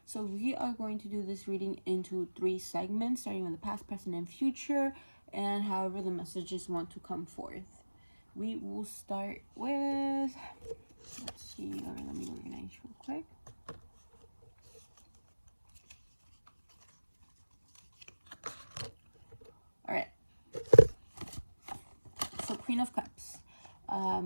So we are going to do this reading into 3 segments, starting with the past, present, and future, and however the messages want to come forth. We will start with, let's see, let me organize real quick. All right. So Queen of Cups.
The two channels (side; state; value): both; inverted; correlation -1.00